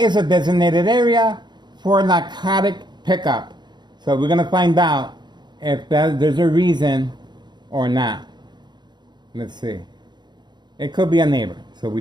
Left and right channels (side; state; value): left; late; 0.21 ms